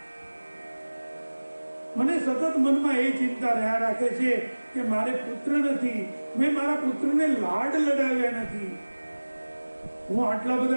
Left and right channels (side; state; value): both; inverted; correlation -1.00